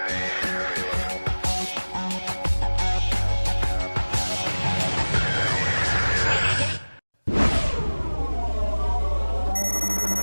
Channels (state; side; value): inverted; both; correlation -1.00